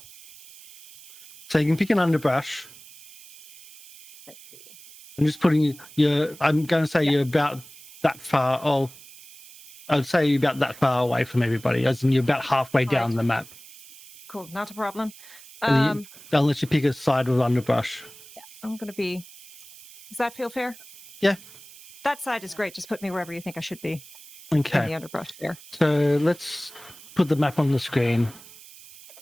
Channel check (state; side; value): noise; right; hiss, 19 dB below the sound